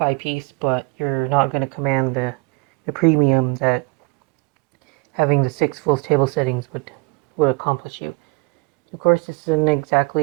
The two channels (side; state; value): left; quieter; 28.4 dB